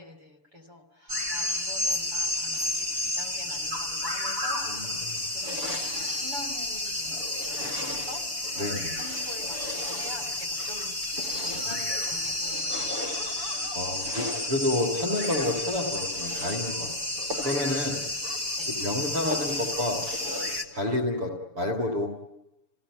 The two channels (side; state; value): left; late; 6.9 ms